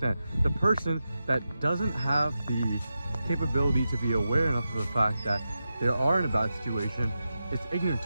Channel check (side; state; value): both; inverted; correlation -0.91